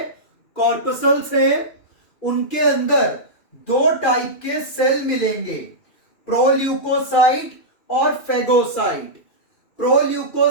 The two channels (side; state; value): right; late; 2.6 ms